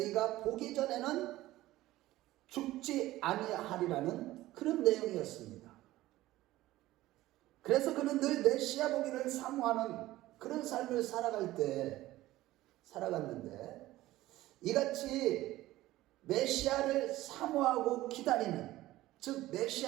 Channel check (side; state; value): left; quieter; 16.4 dB